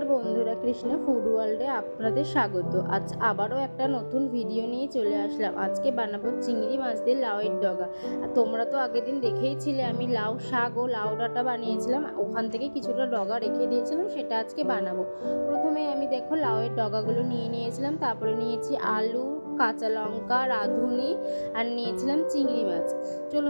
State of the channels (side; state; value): both; inverted; correlation -1.00